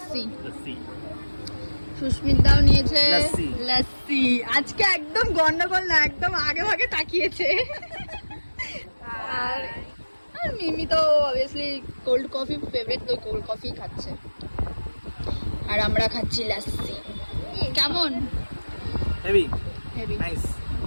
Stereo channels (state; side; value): inverted; both; correlation -1.00